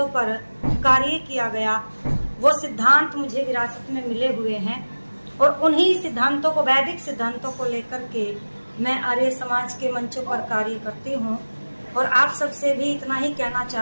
पर कार्य किया गया वो सिद्धांत मुझे विरासत में मिले हुए हैं और उन्हीं सिद्धांतों को, वैदिक सिद्धांतों को लेकर के मैं आर्य समाज के मंचों पर कार्य करती हूँ। और आप सबसे भी इतना ही कहना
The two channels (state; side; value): inverted; both; correlation -1.00